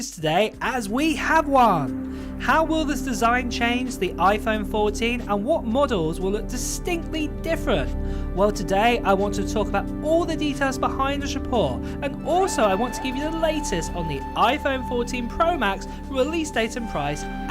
news today, as we have one. How will this design change the iPhone 14 and what models will look distinctly different? Well, today I want to talk about all the details behind this report, and also I want to give you the latest on the iPhone 14 Pro Max release date and price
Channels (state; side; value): identical; both; correlation 1.00